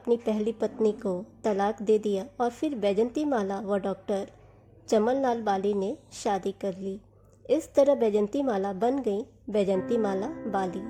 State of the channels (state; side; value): identical; both; correlation 1.00